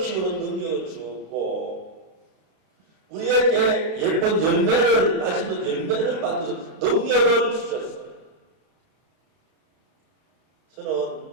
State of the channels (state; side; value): late; left; 32 ms